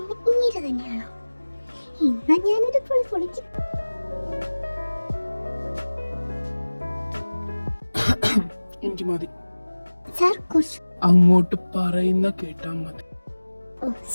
ഇങ്ങനെ തന്നെയാണോ? ഇന്നാ ഞാനൊരു പൊളി പൊളിക്കും. എനിക്ക് മതി സാർ, കുറച്ച് അങ്ങോട്ട് പറയുന്ന കേട്ടാ മതി. ഓ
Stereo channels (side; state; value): both; inverted; correlation -1.00